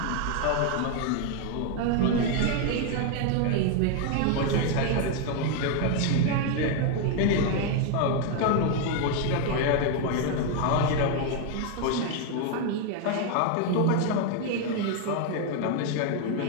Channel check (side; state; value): both; different; correlation 0.01